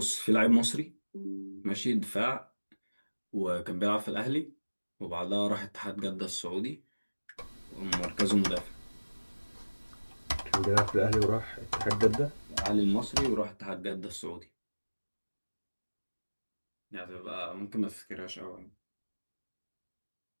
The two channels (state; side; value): inverted; both; correlation -1.00